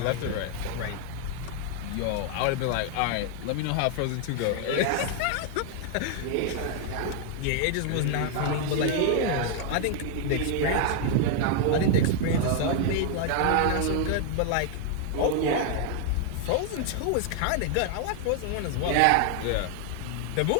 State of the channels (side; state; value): both; different; correlation 0.00